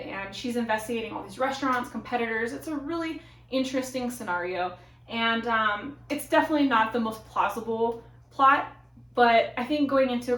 she's investigating all these restaurants, competitors. It's a really interesting scenario. And it's definitely not the most plausible plot, but I think going into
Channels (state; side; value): identical; both; correlation 1.00